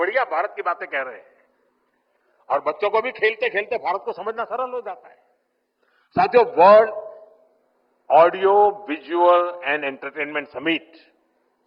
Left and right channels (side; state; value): both; identical; correlation 1.00